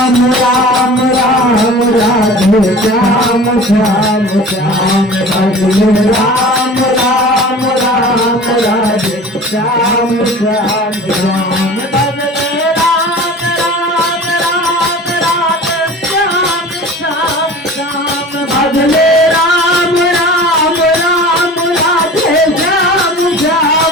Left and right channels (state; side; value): normal; both; correlation 0.40